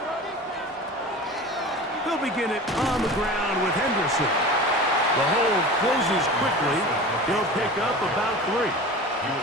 They'll begin it on the ground with Henderson. The hold closes quickly. He'll pick up about 3. He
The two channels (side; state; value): both; normal; correlation 0.35